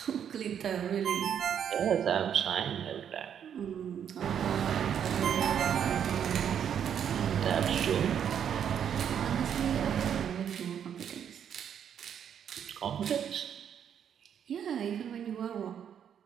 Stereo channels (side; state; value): left; quieter; 8.6 dB